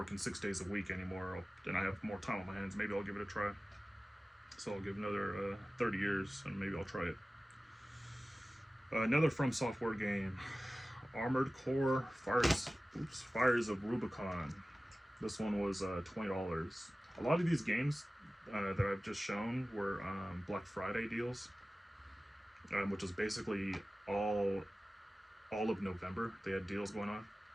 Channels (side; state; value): both; normal; correlation 0.96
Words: 6 days a week anymore, then I have more time on my hands, maybe I'll give it a try. So I'll give another 30 years and maybe I'll try it. Another From Software game, Armored Core Fires of Rubicon. This one was $20. A lot of these games that I've just shown were Black Friday deals, which is basically all of November. They had deals going on.